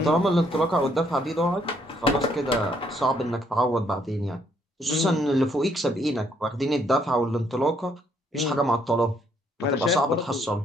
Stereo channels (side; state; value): both; normal; correlation 0.69